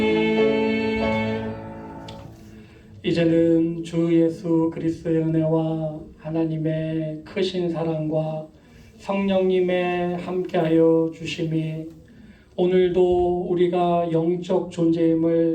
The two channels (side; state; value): both; identical; correlation 1.00